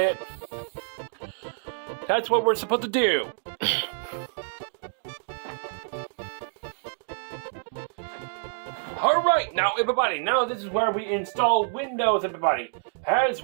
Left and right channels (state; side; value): silent; left; digital silence